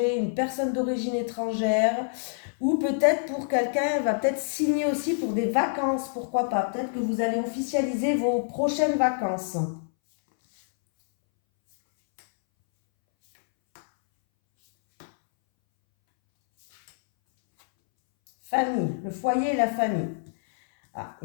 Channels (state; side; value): silent; right; 61 dB below the other